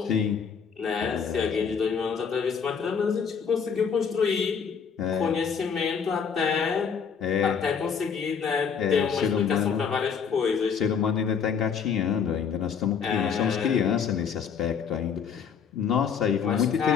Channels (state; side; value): quieter; right; 6.6 dB